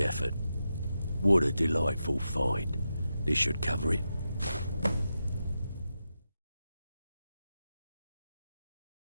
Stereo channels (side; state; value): both; inverted; correlation -0.88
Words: effort. What a delightful find. This should cover it.